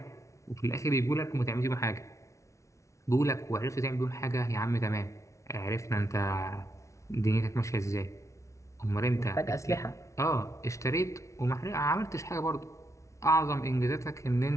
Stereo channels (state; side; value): late; right; 0.14 ms